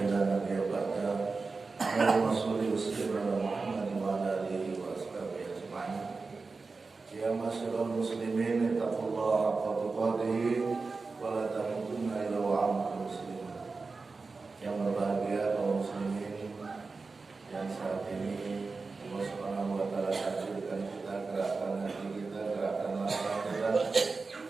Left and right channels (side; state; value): left; quieter; 4.1 dB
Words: لا نبي بعده اللهم صل وسلم على محمد وعلى آله وأصحابه أجمعين يا معشر المسلمين اتقوا الله حق تقاته ولا تموتن إلا وأنتم مسلمون. Yang berbahagia kaum muslimin yang saat ini Allah Subhanahu wa taala takdirkan kita, gerakan hati kita, gerakan mata kita